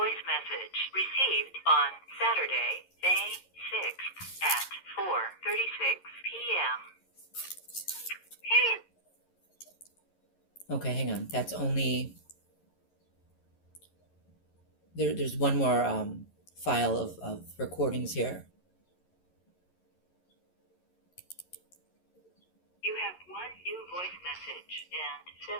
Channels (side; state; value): right; late; 11 ms